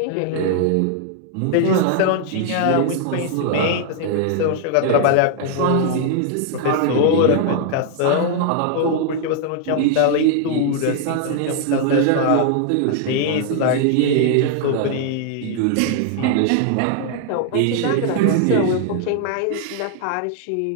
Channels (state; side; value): different; both; correlation 0.00